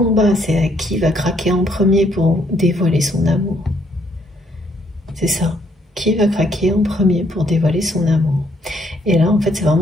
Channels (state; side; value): normal; both; correlation 0.69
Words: c'est à qui va craquer en premier pour dévoiler son amour. C'est ça, qui va craquer en premier pour dévoiler son amour. Et là, en fait, c'est